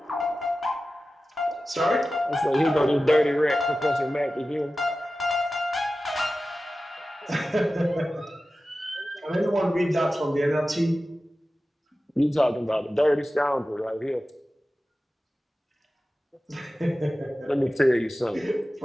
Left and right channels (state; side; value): normal; both; correlation 0.95